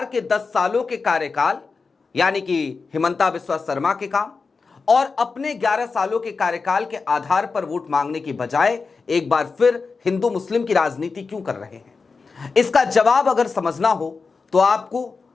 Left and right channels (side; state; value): right; quieter; 4.6 dB